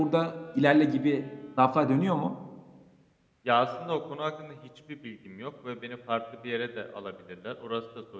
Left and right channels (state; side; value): identical; both; correlation 1.00